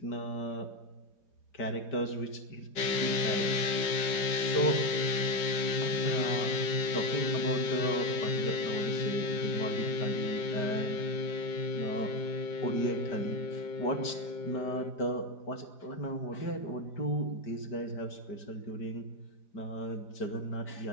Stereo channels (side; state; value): right; late; 4.9 ms